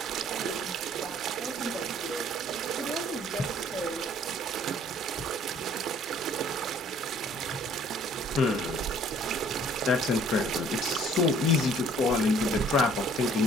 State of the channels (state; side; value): normal; both; correlation 0.57